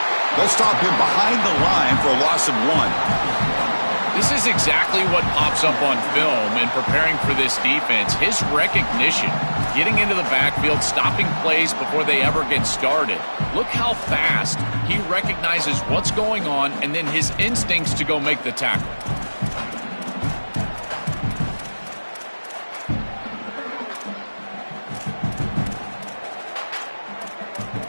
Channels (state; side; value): inverted; both; correlation -1.00